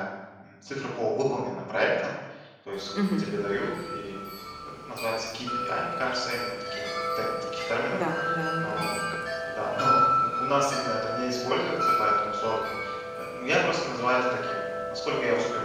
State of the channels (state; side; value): identical; both; correlation 1.00